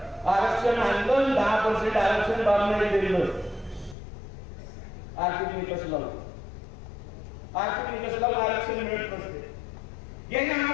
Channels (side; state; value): right; drops out; at 4.0 s